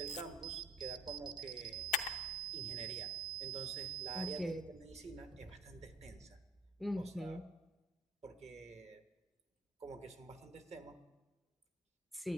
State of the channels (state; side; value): normal; both; correlation 0.57